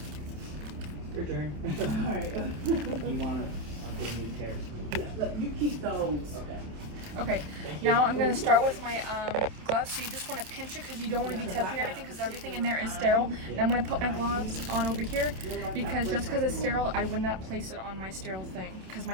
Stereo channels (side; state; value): left; late; 27 ms